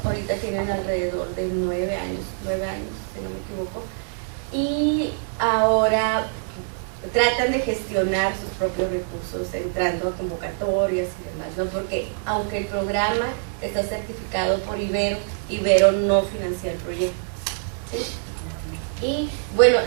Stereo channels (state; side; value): silent; left; digital silence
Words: Ahorita tienen alrededor de 9 años, si no me equivoco, y ahora tratan de gestionar sus propios recursos entrando a convocatorias y demás, ¿no? Porque aunque el programa está certificado por Ibero, Ibero no financia el proyecto, ¿sí? Y bueno,